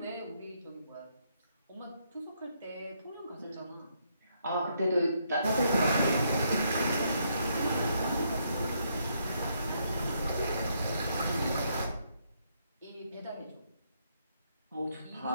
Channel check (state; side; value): inverted; both; correlation -0.74